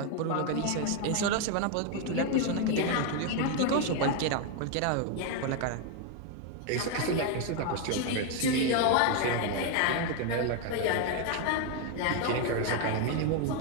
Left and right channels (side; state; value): both; different; correlation 0.01